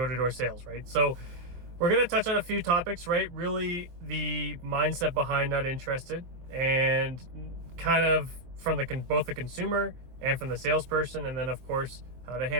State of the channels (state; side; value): late; left; 23 ms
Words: sales, right? So we're going to touch on a few topics, right? Really the mindset behind not interested, and kind of from both the consumer and from the salesperson, and then of course how to